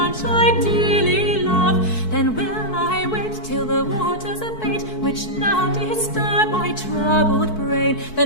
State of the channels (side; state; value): right; late; 4.6 ms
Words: I dearly love. Then will I wait till the waters abate, which now disturb my troubled brain.